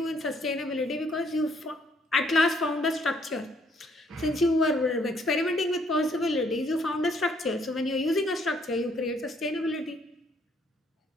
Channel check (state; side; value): normal; both; correlation 0.67